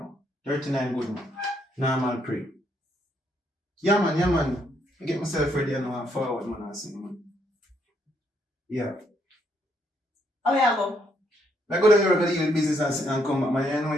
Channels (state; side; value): normal; both; correlation 0.73